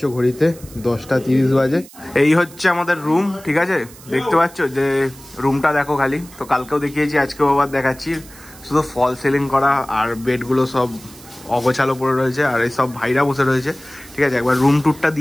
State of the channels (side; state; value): right; noise; hiss, 21 dB below the sound